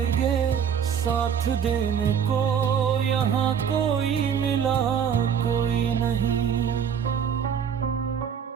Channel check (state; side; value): quieter; left; 7.9 dB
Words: साथ देने को यहाँ कोई मिला कोई नहीं।